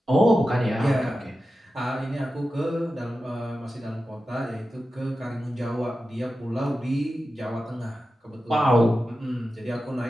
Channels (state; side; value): normal; both; correlation 0.92